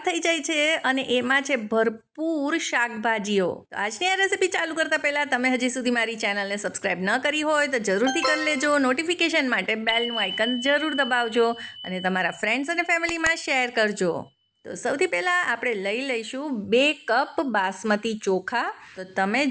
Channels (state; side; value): identical; both; correlation 1.00